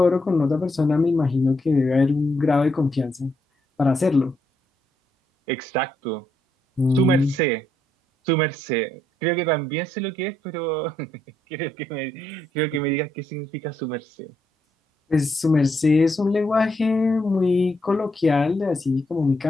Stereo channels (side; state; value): both; normal; correlation 0.77